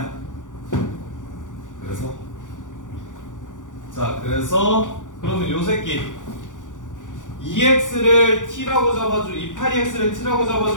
그래서 자 그래서 그러면 요 새끼 EX를 T라고 잡아주 이 8EX를 T라고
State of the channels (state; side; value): late; right; 0.87 ms